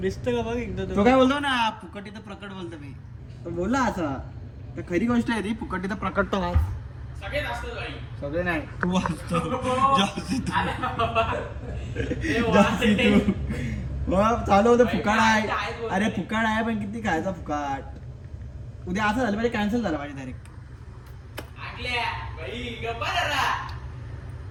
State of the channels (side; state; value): both; identical; correlation 1.00